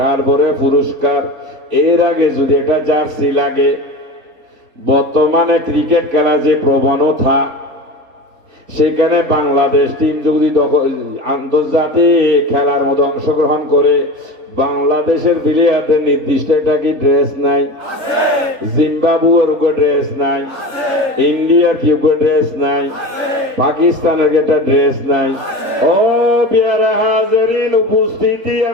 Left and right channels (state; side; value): late; left; 4.3 ms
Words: তারপরে পুরস্কার। এর আগে যদি একটা জার্সি লাগে, বর্তমানে ক্রিকেট খেলা যে প্রবণতা, সেখানে বাংলাদেশ টিম যদি আন্তর্জাতিক খেলার মধ্যে অংশগ্রহণ করে, বাংলাদেশের প্লেয়ারদের নির্দিষ্ট একটা কি ড্রেস নাই? জিম্বাবুয়ের উপর ড্রেস নাই, ইন্ডিয়ার কি উপর ড্রেস নাই, পাকিস্তানের একটা ড্রেস নাই। ও পেয়ারা হাজিরিন, উপস্থিতি